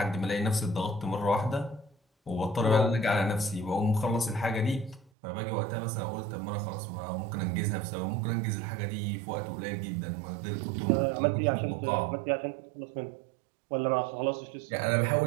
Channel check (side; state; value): left; drops out; at 5.1 s